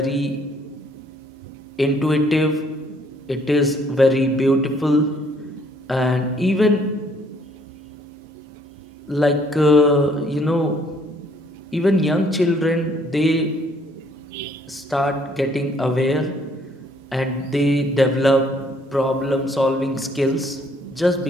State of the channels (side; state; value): both; normal; correlation 0.64